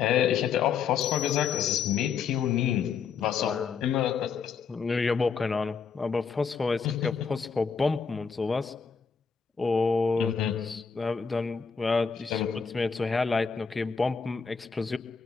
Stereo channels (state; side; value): quieter; right; 5.9 dB